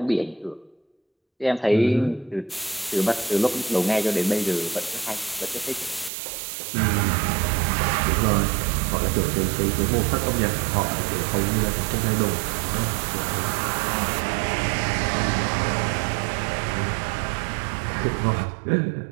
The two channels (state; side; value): drops out; left; at 6.1 s